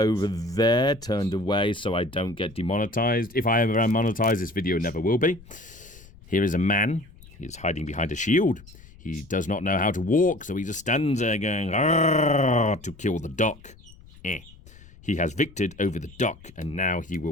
there, turned away, so I don't get demonetized. If I ever am monetized, this video never will be. Here is a man. He is hiding behind a shield. He does not know how to walk, so he just stands there going, "Arrgh," to kill the duck. He has victored over the duck, and now he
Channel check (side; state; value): left; noise; rumble, 22 dB below the sound